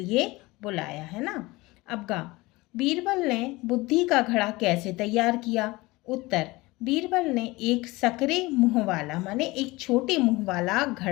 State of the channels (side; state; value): right; quieter; 21.5 dB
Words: बुलाया, है ना। अब गा, बीरबल ने बुद्धि का घड़ा कैसे तैयार किया? उत्तर, बीरबल ने एक सकरे मुंह वाला, माने एक छोटे मुंह वाला